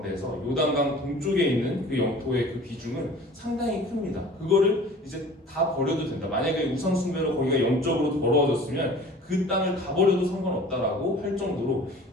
요단강 동쪽에 있는 그 영토의 그 비중은 상당히 큽니다. 그거를 이제 다 버려도 된다. 만약에 우상 숭배로 거기가 영적으로 더러워졌으면 그 땅을 다 버려도 상관없다라고 할 정도로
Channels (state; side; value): normal; both; correlation 0.45